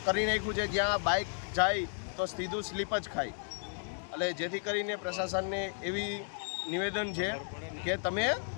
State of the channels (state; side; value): silent; right; 55 dB below the other